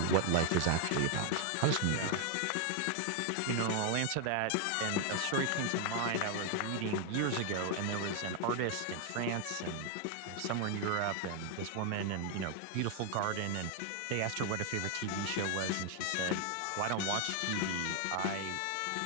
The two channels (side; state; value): both; different; correlation 0.00